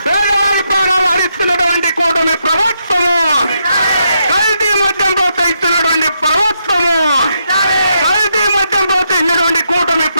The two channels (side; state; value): both; inverted; correlation -0.80